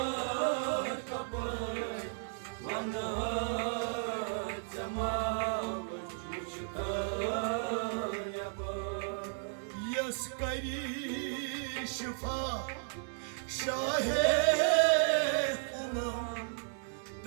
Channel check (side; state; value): left; silent; 55 dB below the other